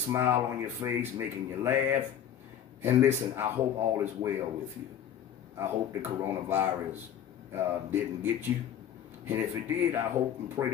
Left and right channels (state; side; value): quieter; right; 9.4 dB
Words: on your face, making you laugh. And listen, I hope all is well with you. I hope the coronavirus didn't get you. And if it did, I hope and pray